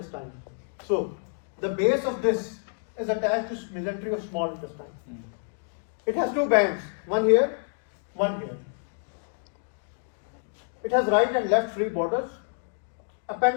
So the base of this is attached to mesentery of small intestine. It has 2 bands, one here, one here. It has right and left free borders.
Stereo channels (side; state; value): right; silent; 59 dB below the other